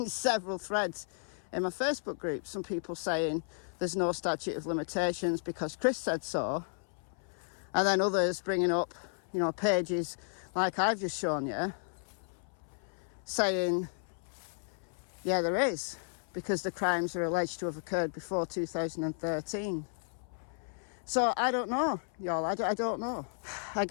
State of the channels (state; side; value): silent; right; 55 dB below the other